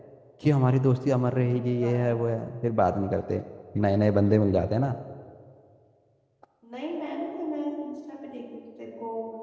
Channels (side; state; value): both; identical; correlation 1.00